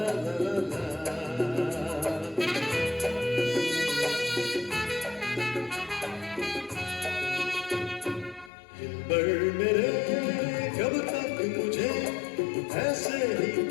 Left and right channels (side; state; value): right; drops out; at 8.5 s